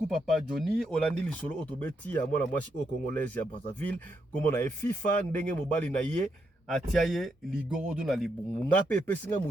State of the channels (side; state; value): both; normal; correlation 0.80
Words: Papa Johnny. Olandi lisolo otobeti ya mwana mwasi o congolaise ya Brazzaville comme na FIFA ndenge mobali na ye atiaye ligorodo na libungu ngape pesinga